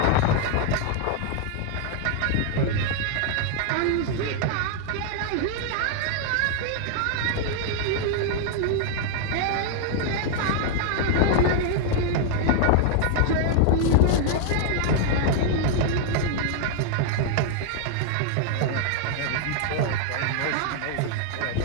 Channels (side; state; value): both; different; correlation 0.00